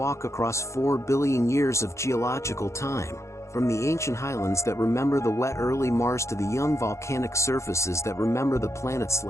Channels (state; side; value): late; right; 0.14 ms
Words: across 4 billion years of geological time, from the ancient highlands that remember the wet early Mars to the young volcanic surfaces that remember the planet's